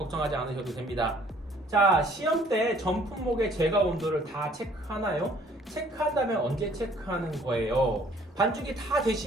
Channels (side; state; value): both; normal; correlation 0.58